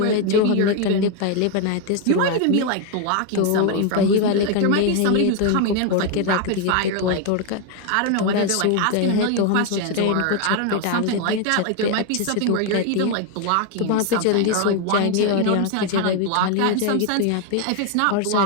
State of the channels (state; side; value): different; both; correlation 0.01